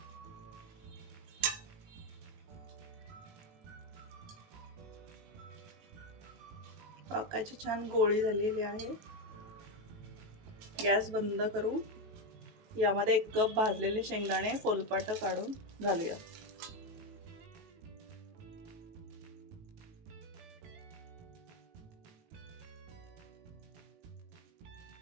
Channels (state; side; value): late; left; 18 ms